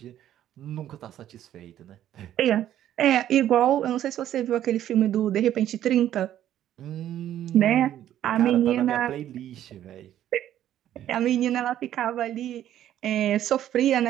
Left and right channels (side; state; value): left; quieter; 11.7 dB